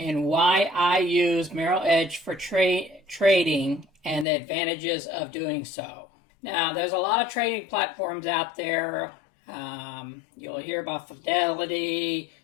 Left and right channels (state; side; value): drops out; right; at 4.2 s